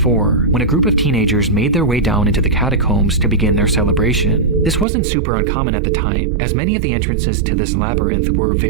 when a group of teenagers made their way down into the catacombs to begin their celebration. This wasn't super uncommon at the time, as many of the entrances to this labyrinth were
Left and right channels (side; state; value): left; drops out; at 4.9 s